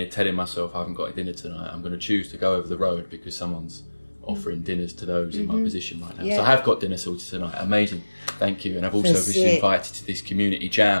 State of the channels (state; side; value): inverted; both; correlation -1.00